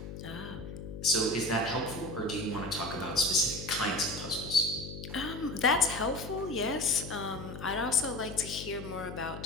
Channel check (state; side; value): noise; left; hum, 9 dB below the sound